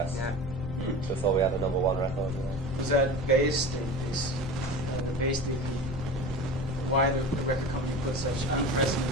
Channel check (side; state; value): left; noise; rumble, 9 dB below the sound